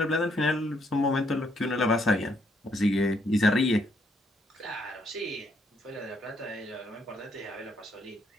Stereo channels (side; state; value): both; normal; correlation 0.72